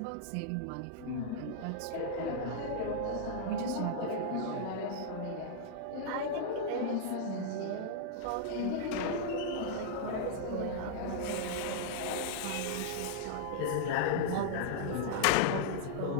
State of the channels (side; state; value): both; different; correlation -0.02